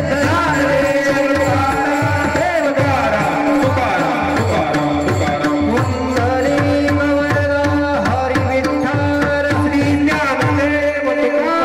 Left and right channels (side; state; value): both; identical; correlation 1.00